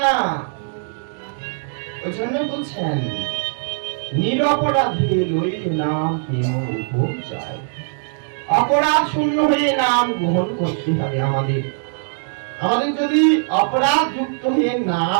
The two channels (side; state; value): left; silent; digital silence